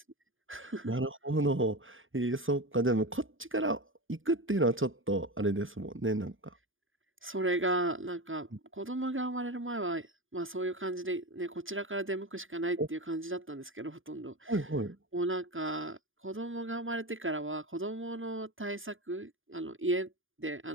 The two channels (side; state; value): left; late; 0.58 ms